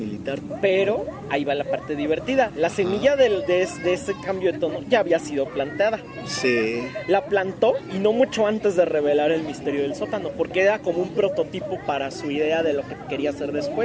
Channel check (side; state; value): both; identical; correlation 1.00